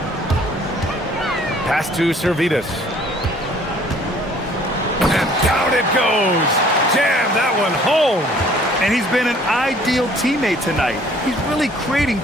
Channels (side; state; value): both; normal; correlation 0.56